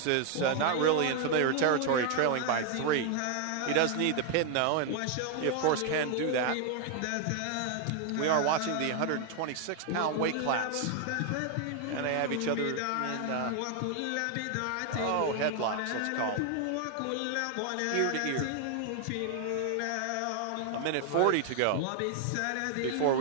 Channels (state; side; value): different; both; correlation 0.00